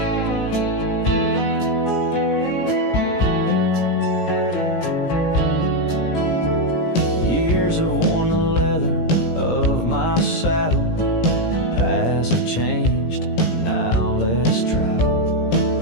Years have worn the leather of my saddle, paths have changed, now let's travel.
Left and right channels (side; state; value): right; late; 17 ms